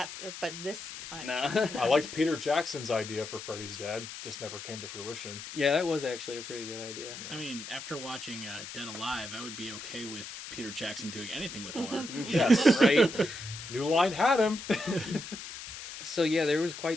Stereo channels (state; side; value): noise; left; hiss, 10 dB below the sound